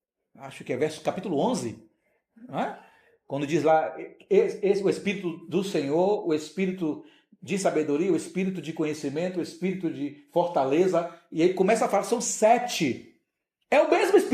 Acho que é capítulo 11. Não é? Quando diz lá, o Espírito do Senhor, o Espírito de sabedoria, o Espírito de conhecimento, o Espírito de fortaleza. E ele começa a falar, são 7. É o mesmo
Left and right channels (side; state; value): both; identical; correlation 1.00